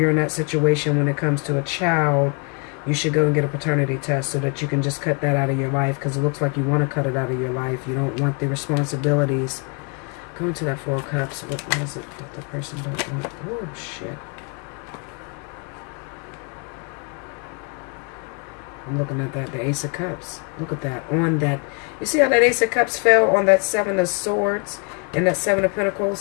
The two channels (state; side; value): quieter; right; 35.2 dB